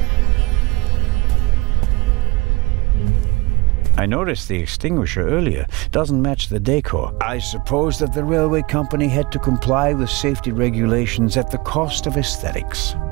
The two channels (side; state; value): left; quieter; 23.4 dB